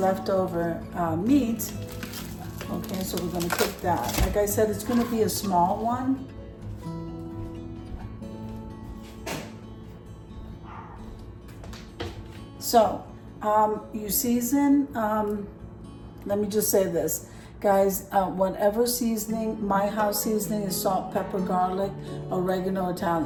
meat. Okay, so we're gonna cook that. Like I said, it's gonna be a small one. So, you season, let me just say this. Guys, whatever seasoning, my house seasoning is salt, pepper, garlic, oregano,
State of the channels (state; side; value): identical; both; correlation 1.00